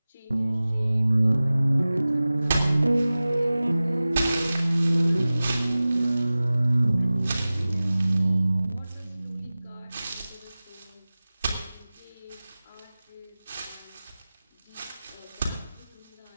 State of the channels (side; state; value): both; inverted; correlation -0.97